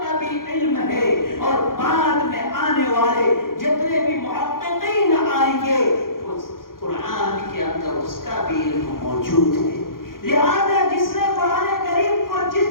کا بھی علم ہے اور بعد میں آنے والے جتنے بھی محققین آئیں گے قرآن کے اندر اس کا بھی علم موجود ہے۔ لہذا جس نے قرآن کریم کو جس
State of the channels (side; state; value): right; late; 0.91 ms